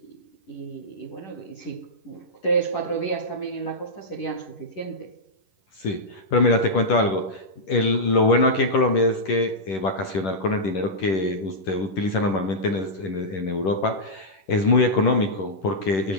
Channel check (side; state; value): right; late; 10 ms